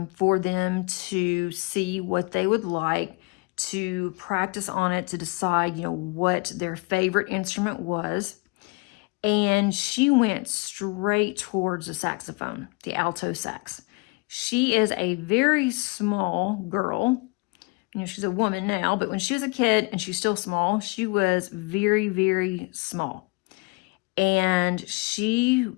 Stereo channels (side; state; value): right; quieter; 28.8 dB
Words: for them to see what they would like, to practice on it, to decide, what their favorite instrument was. And she went straight towards the saxophone, the alto sax. She is a very small girl. She's a woman now, but when she was a kid and she's still small, she was very, very small. And she